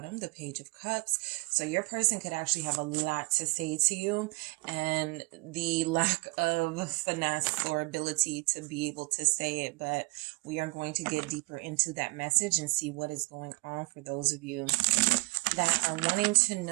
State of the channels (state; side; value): quieter; left; 25.9 dB